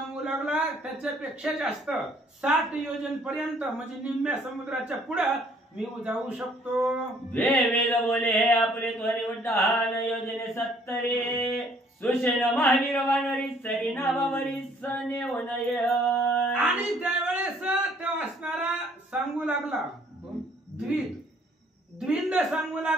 लागला त्याच्यापेक्षा जास्त 60 योजन पर्यंत म्हणजे निम्म्या समुद्राच्या पुढे मी जाऊ शकतो वेद बोले हे आपले त्वरे उड्डाण योजने 70 सुषेण महावीर वानरी सरी नावावरी सनेवनय आणि त्यावेळेस तो असणारा सांगू लागला द्विंद सांगू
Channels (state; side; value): normal; both; correlation 0.61